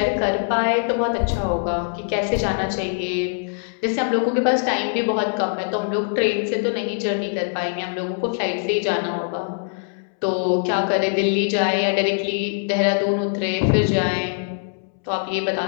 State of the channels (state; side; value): silent; right; 64 dB below the other